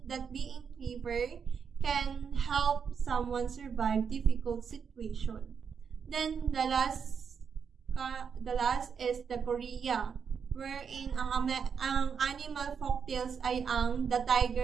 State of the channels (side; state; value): left; quieter; 6.6 dB